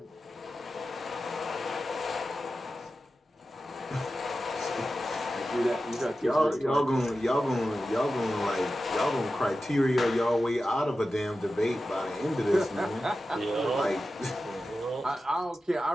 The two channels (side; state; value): both; normal; correlation 0.93